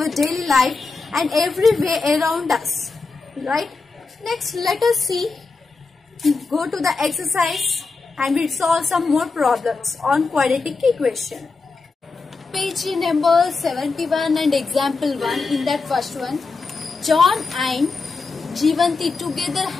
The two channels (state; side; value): quieter; right; 4.2 dB